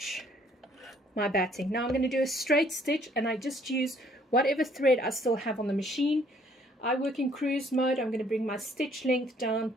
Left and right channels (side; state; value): both; normal; correlation 0.62